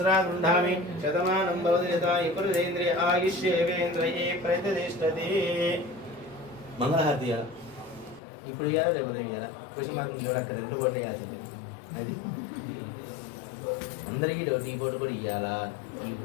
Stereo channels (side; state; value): right; drops out; at 8.2 s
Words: గృహామి శతమానం భవతి యథా పురుషేంద్రియ ఆయుష్యేవేంద్రియే ప్రతిష్టతి మంగళహారతియా ఇప్పుడు ఇవ్వాలా లేకపోతే ఇవ్వాలా కృష్ణమార్గం చూడక్క 2 కోట్లు వేయాల్సింది అది అందరికీ డౌట్ ఈ ఫోటో కూడా ఇవ్వాలా ఈ